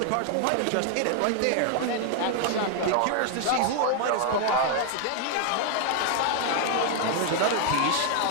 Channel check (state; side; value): different; both; correlation 0.00